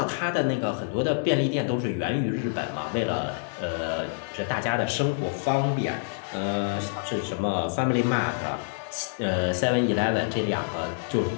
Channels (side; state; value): right; silent; digital silence